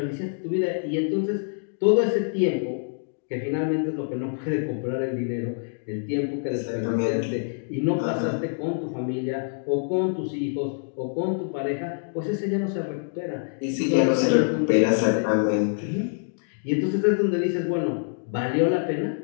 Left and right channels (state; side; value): silent; right; digital silence